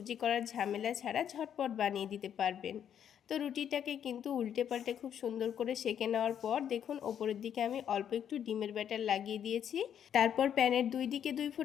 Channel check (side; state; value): right; quieter; 9.1 dB